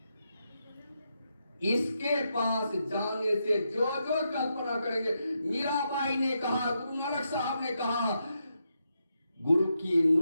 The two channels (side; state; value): both; inverted; correlation -0.83